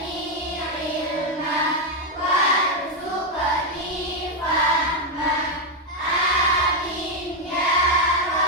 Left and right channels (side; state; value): both; normal; correlation 0.04